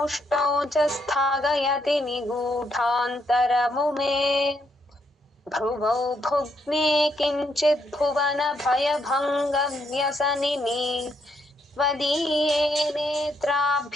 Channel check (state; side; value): normal; both; correlation 0.76